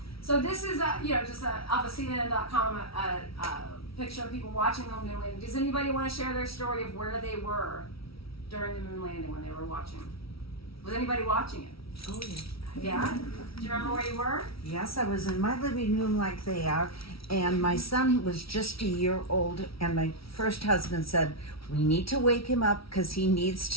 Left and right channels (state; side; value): late; right; 0.75 ms